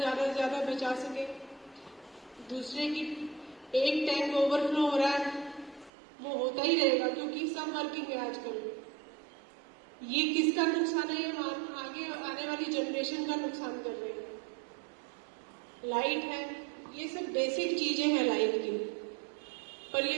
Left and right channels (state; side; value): drops out; left; at 5.9 s